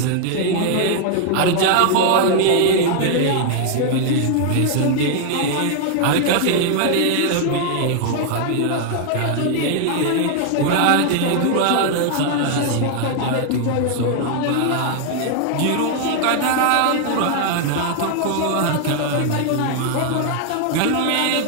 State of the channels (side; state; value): both; different; correlation 0.00